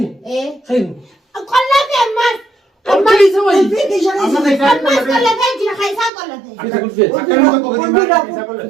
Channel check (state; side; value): drops out; left; at 6.1 s